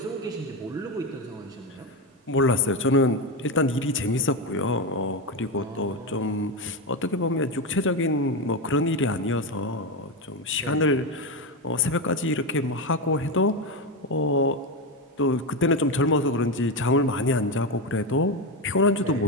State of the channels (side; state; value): both; normal; correlation 0.13